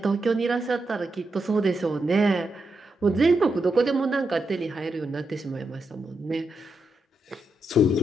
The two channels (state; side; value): normal; both; correlation 0.84